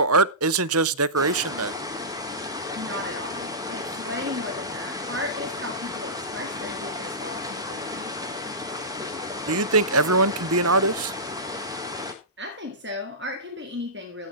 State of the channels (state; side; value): normal; both; correlation -0.19